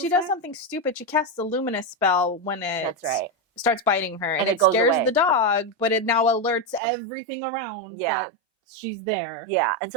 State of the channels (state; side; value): drops out; left; at 6.8 s